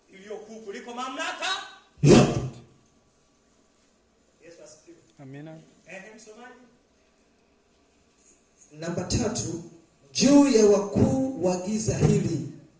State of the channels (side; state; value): both; identical; correlation 1.00